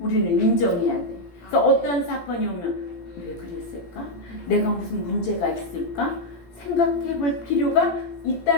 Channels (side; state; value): right; late; 17 ms